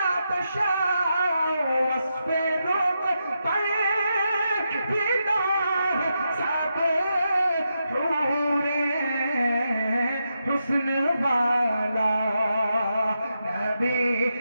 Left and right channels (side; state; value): both; inverted; correlation -0.85